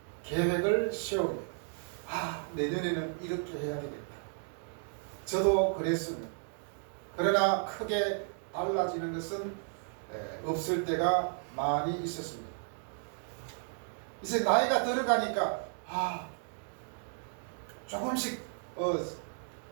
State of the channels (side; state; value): left; silent; 55 dB below the other